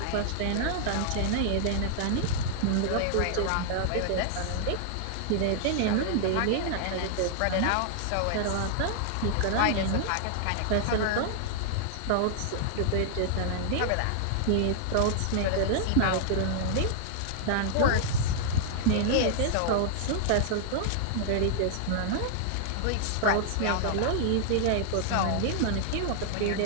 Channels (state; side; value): different; both; correlation -0.01